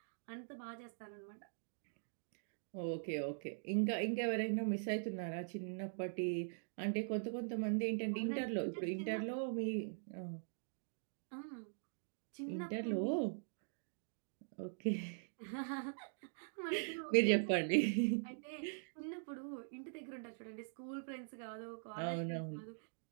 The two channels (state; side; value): silent; left; digital silence